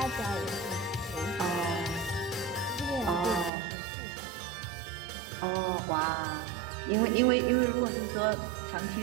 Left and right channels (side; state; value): left; drops out; at 3.5 s